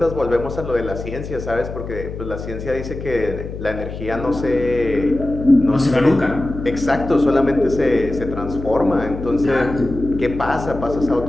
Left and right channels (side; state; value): left; noise; hum, 9 dB below the sound